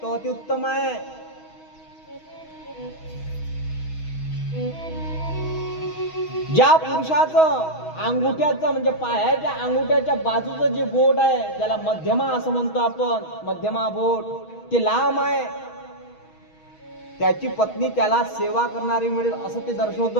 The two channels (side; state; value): right; late; 6.3 ms